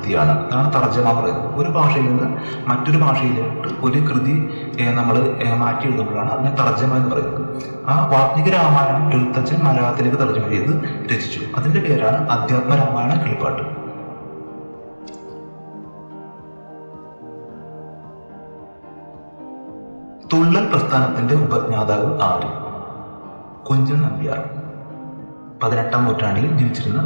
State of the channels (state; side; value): inverted; both; correlation -1.00